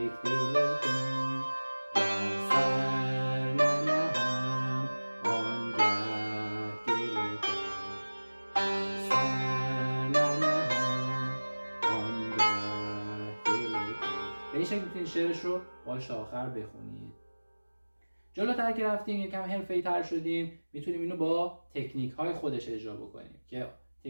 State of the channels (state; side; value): inverted; both; correlation -1.00